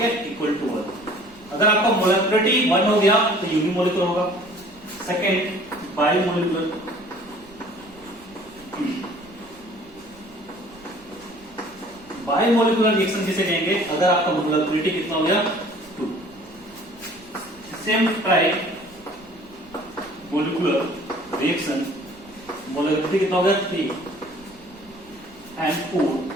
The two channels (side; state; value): right; noise; rumble, 26 dB below the sound